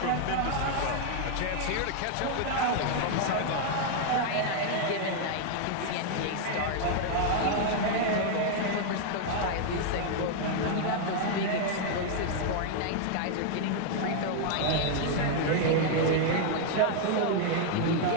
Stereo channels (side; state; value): both; different; correlation 0.00